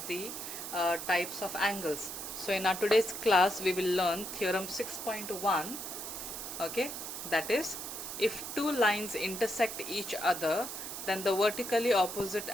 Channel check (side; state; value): right; noise; hiss, 7 dB below the sound